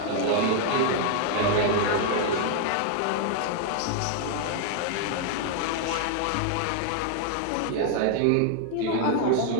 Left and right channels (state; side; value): different; both; correlation 0.00